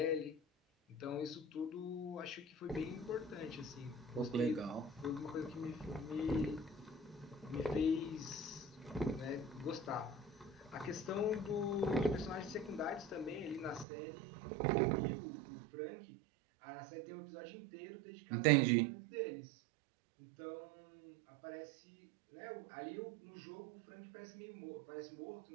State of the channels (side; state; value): left; drops out; at 13.9 s